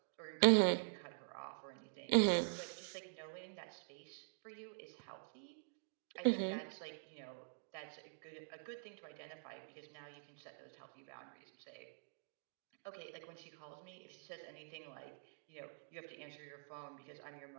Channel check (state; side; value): silent; left; digital silence